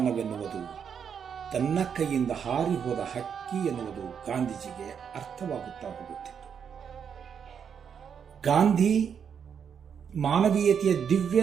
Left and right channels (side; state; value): left; quieter; 7.4 dB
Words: ತನ್ನ ಕೈಯಿಂದ ಹಾರಿ ಹೋದ ಹಕ್ಕಿ ಎನ್ನುವುದು ಗಾಂಧೀಜಿಗೆ ಅರ್ಥವಾಗುತ್ತಾ ಹೋಗುತ್ತಿತ್ತು. ಗಾಂಧಿ ಮಾನವೀಯತೆಯ ದಿವ್ಯ